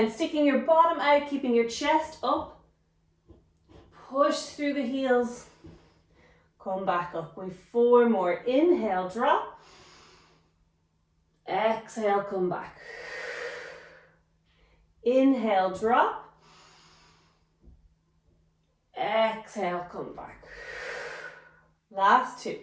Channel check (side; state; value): both; identical; correlation 1.00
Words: sticking your bottom out, keeping your chest up. Push through the heels, come back up. We've 4 more. Inhale, drop. Exhale, come back. Inhale, drop. Exhale, come back. Last 2.